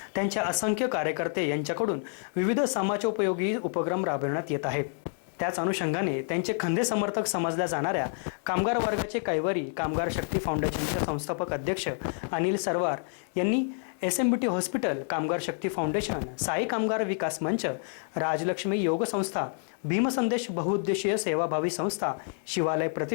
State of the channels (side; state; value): right; silent; 59 dB below the other